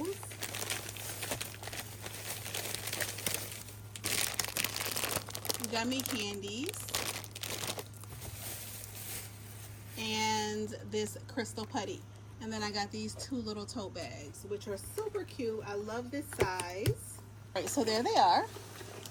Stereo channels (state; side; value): identical; both; correlation 1.00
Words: Gummy candies and this crystal putty. And then I got these 2 little tote bags, which are super cute. I love this size. All right, so there they are.